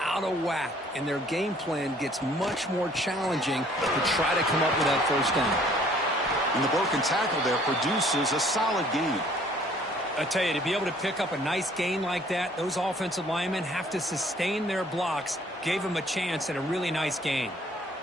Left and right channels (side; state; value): both; normal; correlation 0.58